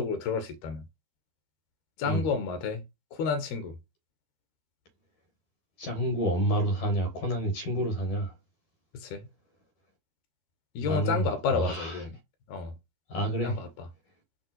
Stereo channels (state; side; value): late; right; 13 ms